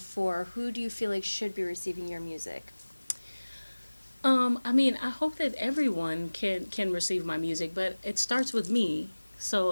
Who do you feel like should be receiving your music? I mean, I hope that everyone can receive my music, but it starts with me.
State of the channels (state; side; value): inverted; both; correlation -1.00